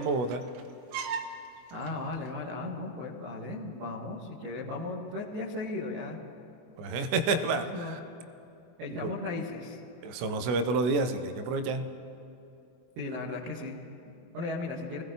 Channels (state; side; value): late; left; 24 ms